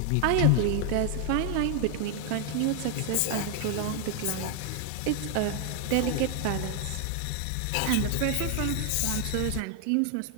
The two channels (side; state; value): both; different; correlation 0.00